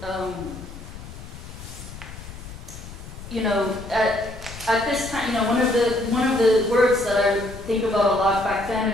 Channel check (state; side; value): noise; left; rumble, 13 dB below the sound